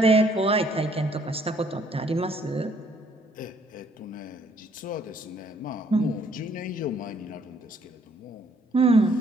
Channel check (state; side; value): normal; both; correlation 0.65